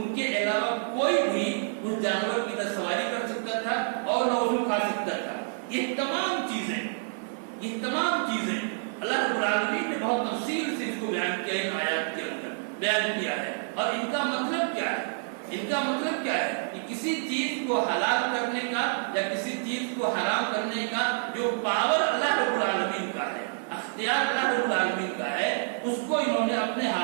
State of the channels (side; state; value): left; silent; 57 dB below the other